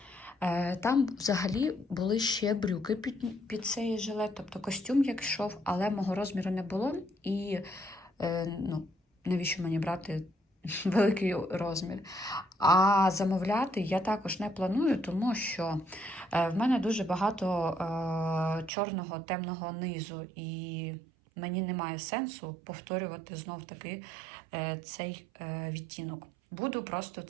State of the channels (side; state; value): left; drops out; at 18.7 s